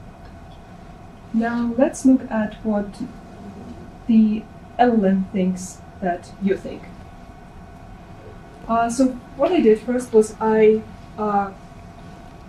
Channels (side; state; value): both; identical; correlation 1.00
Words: now let's look at what the LLM thinks that you think. So what I did first was I